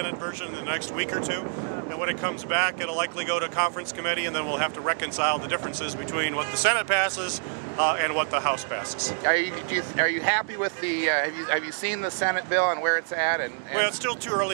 version in the next week or two. And when it comes back, it'll likely go to conference committee, and then we'll have to reconcile the differences between what the Senate passes and what the House passes. Are you happy with the? Have you seen the Senate bill and where it's at? Well, it's still too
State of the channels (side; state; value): left; silent; 60 dB below the other